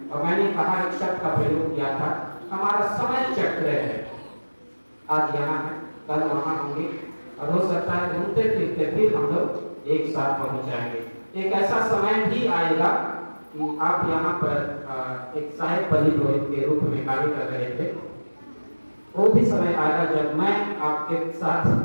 और मैंने कहा एक शब्द का प्रयोग किया था, हमारा समय चक्र है, आज यहाँ है, कल वहाँ होंगे और हो सकता है घूमते फिरते फिर हम लोग एक साथ पहुँच जाएंगे। एक ऐसा समय भी आएगा कि आप यहाँ पर एक सहायक पल्ली पुरोहित के रूप में कार्य कर रहे थे, वो भी समय आएगा जब मैं आपके साथ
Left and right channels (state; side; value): inverted; both; correlation -1.00